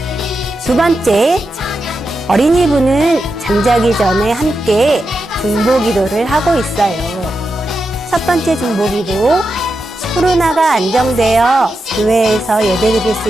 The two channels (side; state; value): both; normal; correlation 0.88